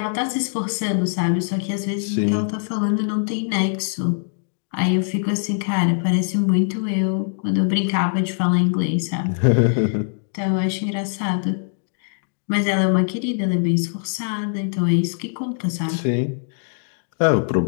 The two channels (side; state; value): right; silent; digital silence